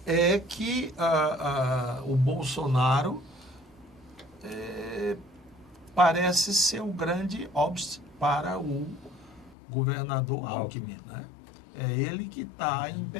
é que o Bolsonaro parece ser o grande obstáculo para o governador Alckmin, né? É ele que está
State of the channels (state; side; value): drops out; right; at 9.6 s